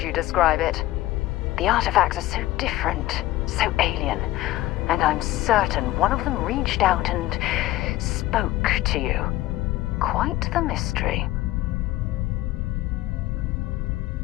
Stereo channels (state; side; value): quieter; right; 16.5 dB